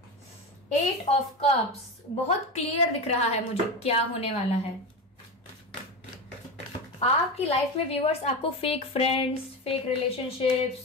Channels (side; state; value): both; normal; correlation 0.21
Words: एट ऑफ कप्स बहुत क्लियर दिख रहा है मुझे क्या होने वाला है। आपकी लाइफ में व्यूअर्स, आपको फेक फ्रेंड्स, फेक